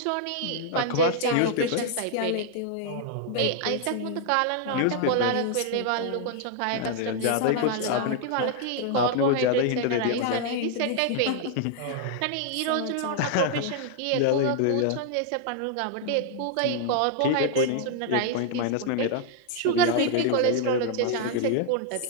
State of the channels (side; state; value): both; different; correlation 0.00